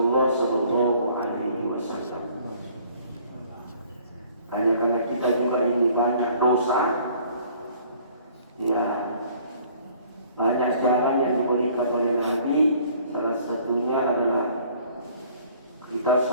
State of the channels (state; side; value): inverted; both; correlation -0.56